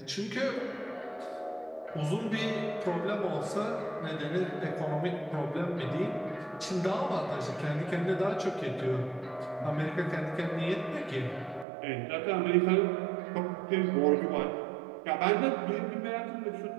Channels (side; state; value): left; drops out; at 11.7 s